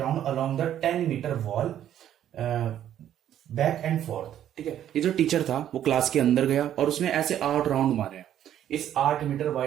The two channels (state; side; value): quieter; left; 10.9 dB